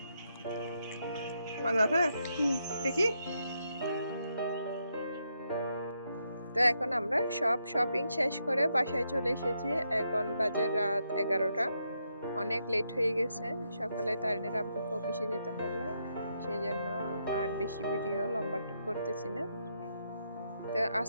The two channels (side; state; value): both; inverted; correlation -0.80